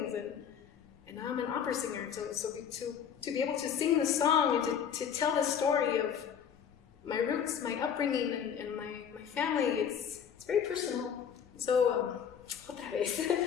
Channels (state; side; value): quieter; right; 7.9 dB